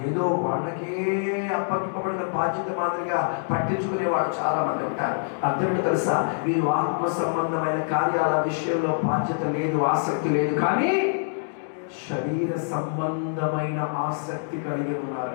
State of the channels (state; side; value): silent; right; digital silence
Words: వాళ్ళకే అప్పగింపబడిన బాధ్యత మాదిరిగా పట్టించుకునేవాడు చాలా మంది ఉంటారు. అర్థమేంటో తెలుసా? వీరు ఆత్మ సంబంధమైన కార్యాల విషయంలో బాధ్యత లేదు, ఆసక్తి లేదు, కానీ శరీర సంబంధమైన ఆసక్తి కలిగి